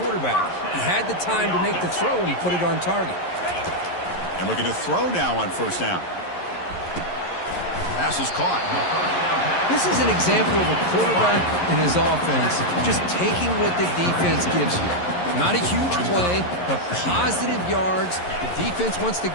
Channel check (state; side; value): late; right; 11 ms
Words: quarterback. He had the time to make the throw, and he put it on target. And looking to throw now on first down. Pass is caught. This is an example of a quarterback and his offense just taking what the defense gives you. Not a huge play, but positive yards. The defense wants to